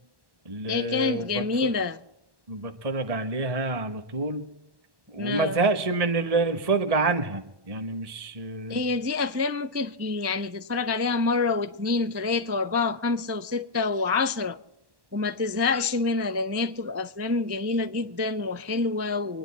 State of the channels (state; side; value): late; left; 1.1 ms